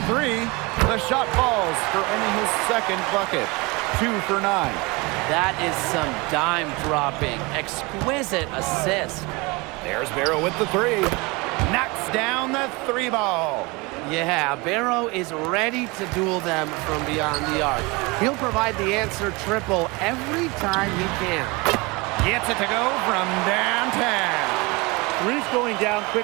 three. The shot falls for only his second bucket. 2 for 9. That is some dime dropping, exquisite assist. There's Barrow with the three. Knocks down the three ball. Yeah, Barrow is ready to duel them from beyond the arc. He'll provide the answer triple every time he can. Gets it to go from downtown. Three's going down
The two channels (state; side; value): quieter; left; 25.8 dB